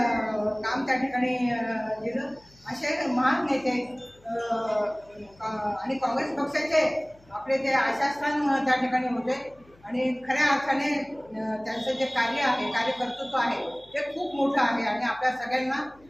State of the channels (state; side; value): noise; left; hum, 28 dB below the sound